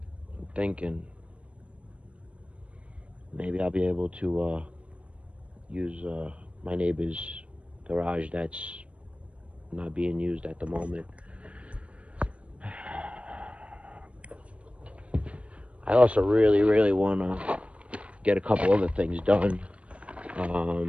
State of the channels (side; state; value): left; late; 0.062 ms